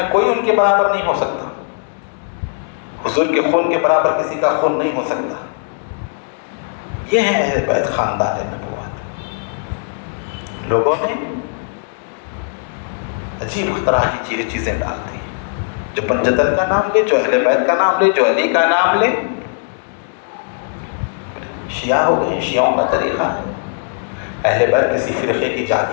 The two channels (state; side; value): silent; right; digital silence